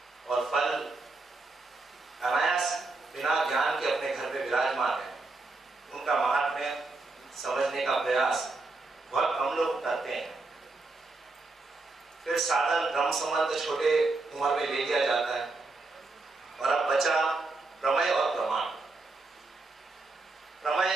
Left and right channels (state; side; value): quieter; left; 3.4 dB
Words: और फल अनायास बिना ज्ञान के अपने घर में विराजमान है। उनका महात्म्य समझने का प्रयास बहुत कम लोग करते हैं। फिर साधन ब्रह्म संबंध छोटे उम्र में ले लिया जाता है, और अब बचा प्रमेय और प्रमाण।